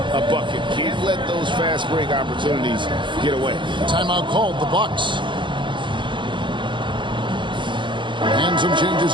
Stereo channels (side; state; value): left; late; 0.23 ms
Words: a bucket. Can't let those fast break opportunities get away. Timeout called, the Bucks. And some changes